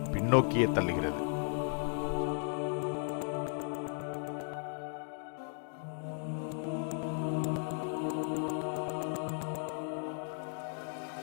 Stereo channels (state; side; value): silent; right; 54 dB below the other